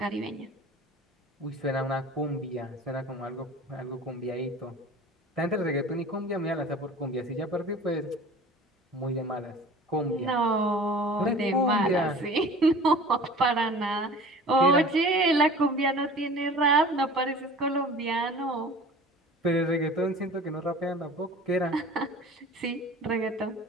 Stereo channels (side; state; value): both; normal; correlation 0.42